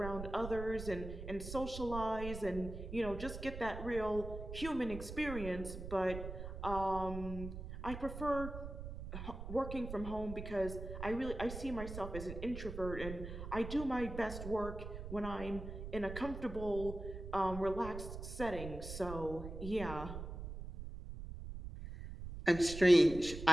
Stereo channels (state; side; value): noise; right; rumble, 8 dB below the sound